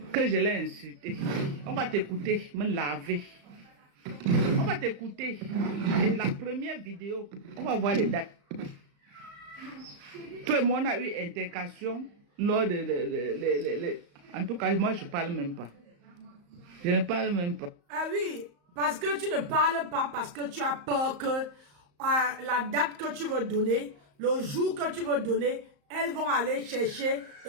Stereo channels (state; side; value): late; left; 35 ms